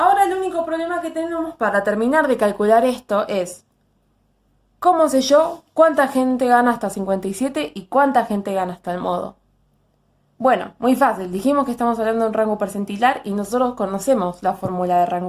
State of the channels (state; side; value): identical; both; correlation 1.00